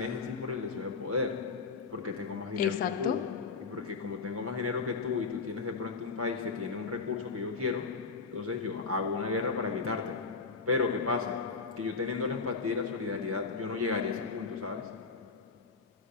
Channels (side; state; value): right; quieter; 4.6 dB